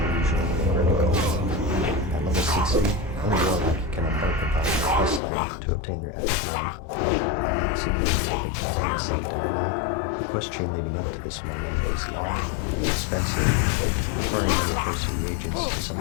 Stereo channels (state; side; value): drops out; right; at 5.2 s